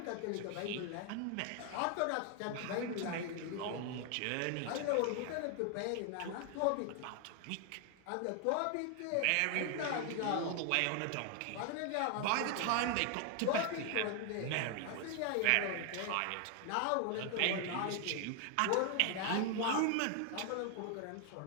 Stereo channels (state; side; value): different; both; correlation 0.00